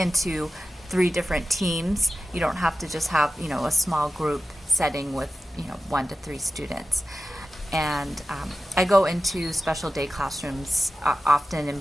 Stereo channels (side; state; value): both; normal; correlation 0.94